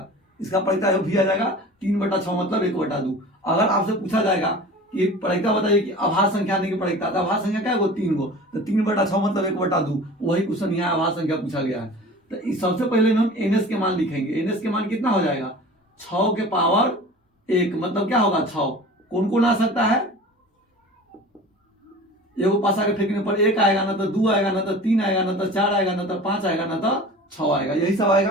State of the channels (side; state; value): both; normal; correlation 0.39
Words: इसका प्रायिकता भी आ जाएगा 3/6 मतलब 1/2। अगर आपसे पूछा जाएगा कि प्रायिकता बताइए कि अभाज्य संख्या आने की प्रायिकता, तो अभाज्य संख्या क्या है? 3 गो, तो 3/6 मतलब 1/2। वही क्वेश्चन यहाँ अभाज्य संख्या पूछा गया है। तो सबसे पहले हम एनएस के मान लिखेंगे। एनएस के मान कितना हो जाएगा? 6 के पावर 1 मतलब क्या होगा? 6। कौन कौन आ सकता है? एगो पासा के फेंकने पर 1 आएगा, ना तो 2 आएगा, ना तो 3 आएगा, ना तो 4 आएगा, ना तो 5 आएगा, ना तो 6 आएगा। यही सब